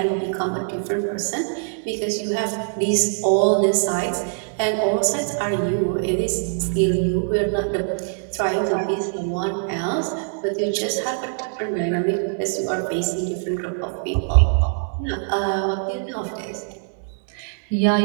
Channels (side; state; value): left; silent; 63 dB below the other